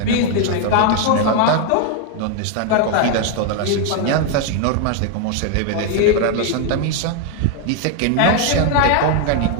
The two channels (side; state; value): both; different; correlation 0.00